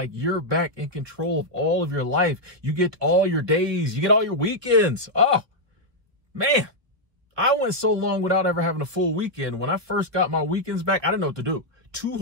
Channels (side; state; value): left; late; 1.5 ms